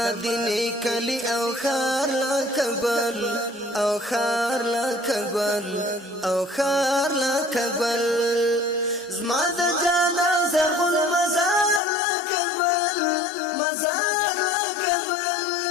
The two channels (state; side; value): drops out; right; at 11.8 s